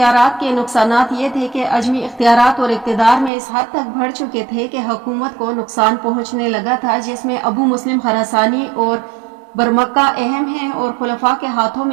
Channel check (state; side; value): drops out; left; at 3.3 s